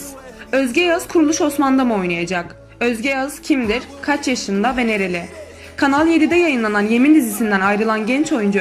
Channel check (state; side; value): identical; both; correlation 1.00